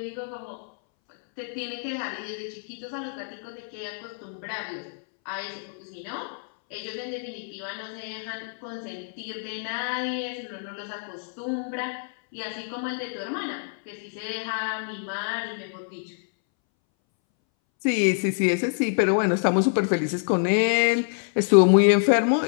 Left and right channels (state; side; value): silent; right; 60 dB below the other